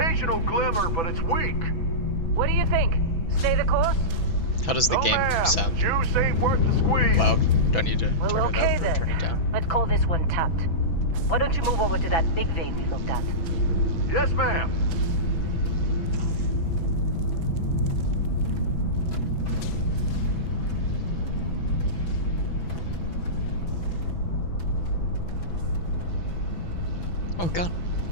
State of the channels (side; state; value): right; late; 6.0 ms